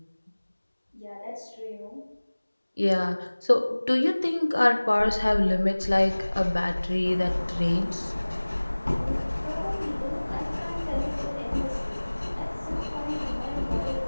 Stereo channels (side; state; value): both; inverted; correlation -1.00